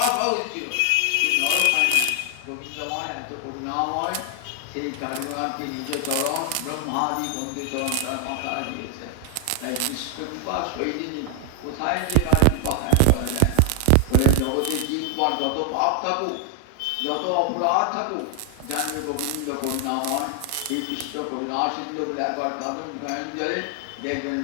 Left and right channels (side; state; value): both; different; correlation 0.00